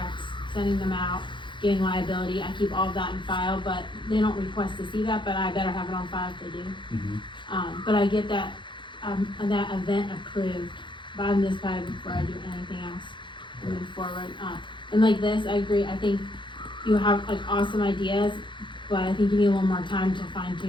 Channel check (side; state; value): right; late; 0.23 ms